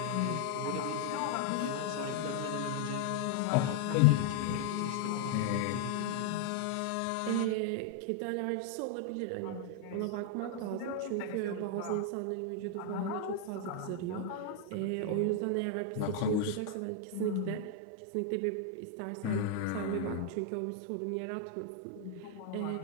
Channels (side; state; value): both; different; correlation 0.00